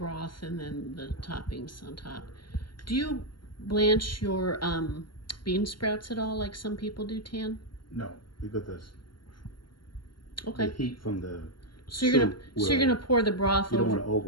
and then the toppings on top. Do you blanch your bean sprouts at all like some people do, Tan? No, because the heat from the So you're gonna pour the broth You don't over.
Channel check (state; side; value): late; right; 0.72 ms